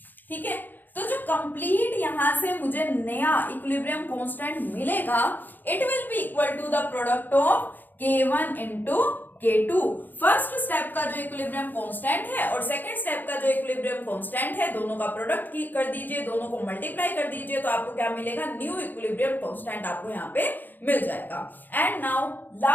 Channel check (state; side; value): late; right; 0.088 ms